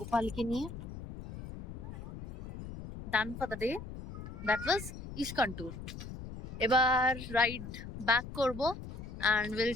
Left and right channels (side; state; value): left; noise; rumble, 10 dB below the sound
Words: নিয়ে। Done for the day, that was ISKCON tour. এবার রাইড ব্যাক করবো and will